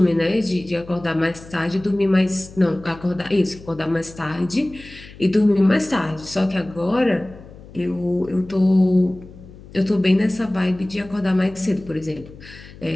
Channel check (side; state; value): left; noise; hum, 19 dB below the sound